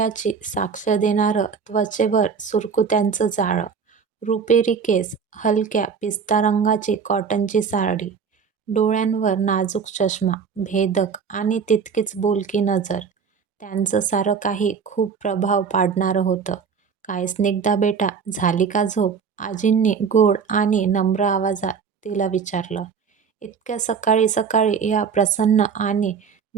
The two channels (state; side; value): quieter; left; 6.2 dB